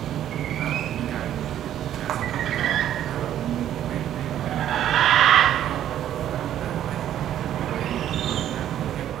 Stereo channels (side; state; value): left; quieter; 11.2 dB